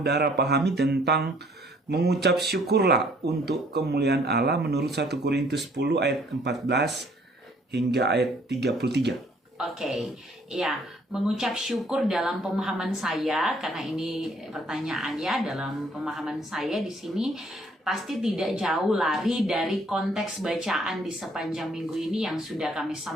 pahami tentang mengucap syukurlah untuk kemuliaan Allah menurut 1 Korintus 10 ayat 14 hingga ayat 33. Oke, ya, mengucap syukur dalam pemahaman saya, karena ini pertanyaannya dalam pemahaman saya di sini pasti tidak jauh lari dari konteks bacaan di sepanjang minggu ini yang sudah kami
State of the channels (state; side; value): normal; both; correlation 0.61